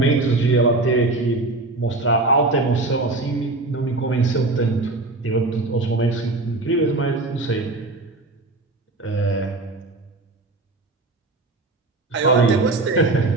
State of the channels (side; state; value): left; quieter; 3.1 dB